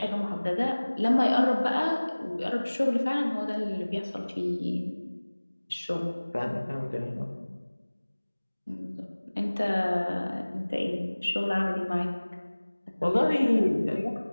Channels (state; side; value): inverted; both; correlation -1.00